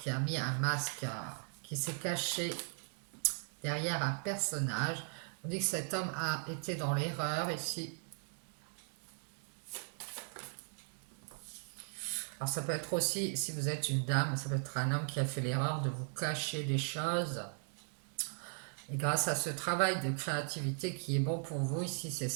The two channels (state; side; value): silent; left; 53 dB below the other